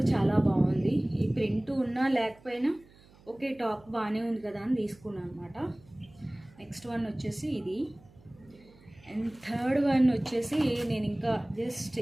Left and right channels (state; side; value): noise; right; hum, 26 dB below the sound